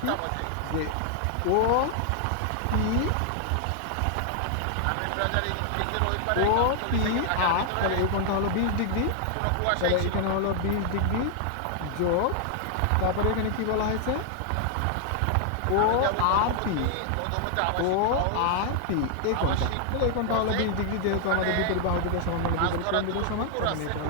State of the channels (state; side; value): different; both; correlation 0.00